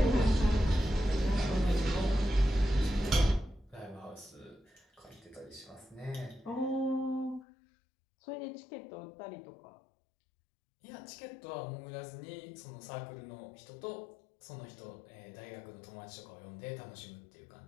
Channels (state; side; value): drops out; right; at 7.5 s